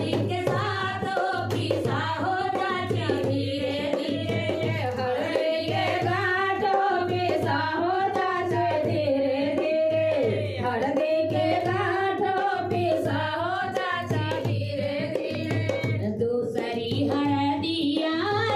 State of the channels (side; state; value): both; identical; correlation 1.00